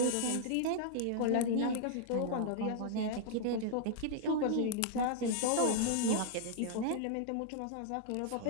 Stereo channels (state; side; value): different; both; correlation -0.01